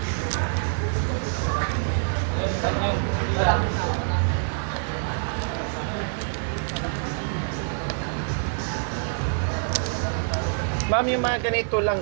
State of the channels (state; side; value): silent; left; 57 dB below the other